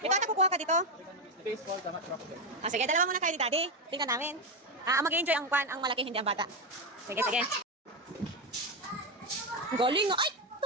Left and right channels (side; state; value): both; normal; correlation 0.09